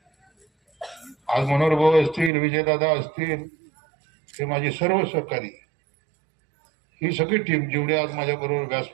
आज मनोहर भाऊ असतील, विजयदादा असतील, हे माझे सर्व सहकारी, ही सगळी टीम जेवढी आज माझ्या बरोबर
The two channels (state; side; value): drops out; left; at 2.3 s